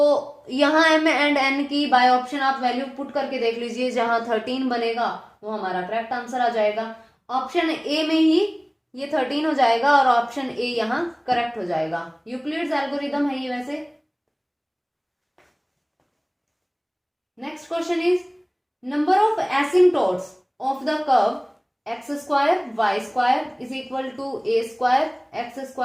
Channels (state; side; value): identical; both; correlation 1.00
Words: यहाँ m एंड n की बाय ऑप्शन आप वैल्यू पुट करके देख लीजिए, जहां 13 बनेगा वो हमारा करेक्ट आंसर आ जाएगा, ऑप्शन ए में ही ये 13 हो जाएगा और ऑप्शन ए यहाँ करेक्ट हो जाएगा। यूक्लिड्स एल्गोरिदम है ये वैसे। Next question is number of asymptotes of the curve x square y square is equal to a square x